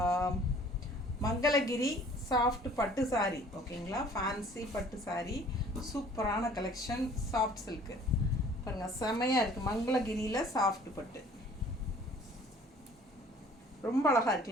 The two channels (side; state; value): both; normal; correlation 0.53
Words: மங்களகிரி சாஃப்ட் பட்டு சாரி. ஓகேங்களா, ஃபேன்சி பட்டு சாரி, சூப்பரான கலெக்ஷன். சாஃப்ட் சில்க்கு பாருங்கள், செமையாக இருக்குது. மங்களகிரியில் சாஃப்ட் பட்டு ரொம்ப அழகாக